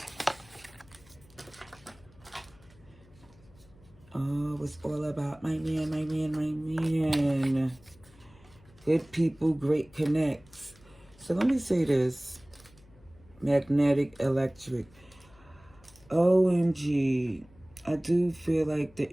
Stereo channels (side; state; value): left; noise; hum, 26 dB below the sound